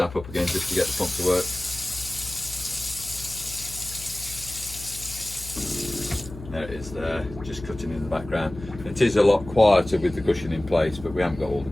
up again just to get the pump to work. There it is there, just cutting in the background. It is a lot quieter with the cushion in place, but we haven't got all the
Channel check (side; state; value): left; noise; hum, 14 dB below the sound